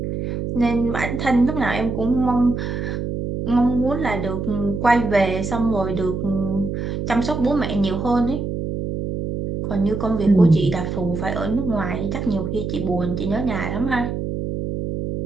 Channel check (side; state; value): right; noise; hum, 4 dB below the sound